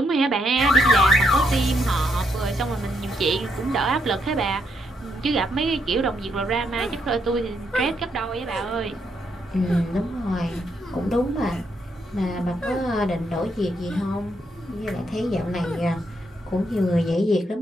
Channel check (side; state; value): both; normal; correlation 0.77